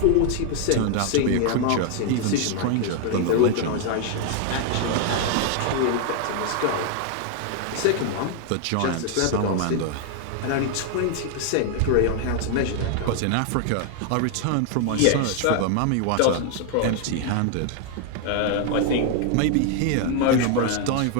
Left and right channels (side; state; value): both; different; correlation 0.00